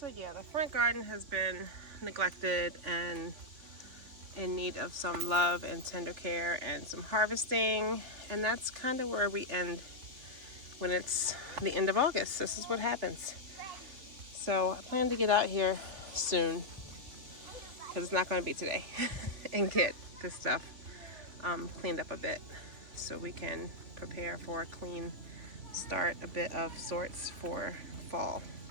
yeah, the front garden has been neglected and in need of some love and tender care and some harvesting. And that's kind of where we end when it's the end of August. This is what happens. So I plan to get out here soon, because it's not going to be today, and get this stuff cleaned up a bit so we can prepare for a clean start, a bit of sorts for fall.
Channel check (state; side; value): late; left; 3.5 ms